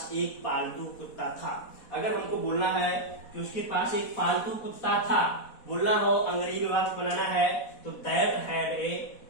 एक पालतू कुत्ता था। अगर हमको बोलना है कि उसके पास एक पालतू कुत्ता था, बोलना हो अंग्रेजी में वाक्य बनाना है, तो that had a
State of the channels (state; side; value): late; right; 4.1 ms